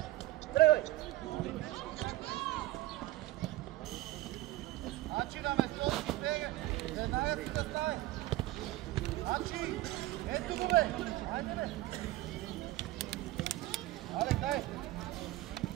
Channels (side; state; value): left; quieter; 17.4 dB